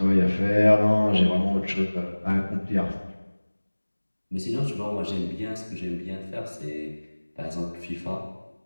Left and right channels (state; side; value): inverted; both; correlation -1.00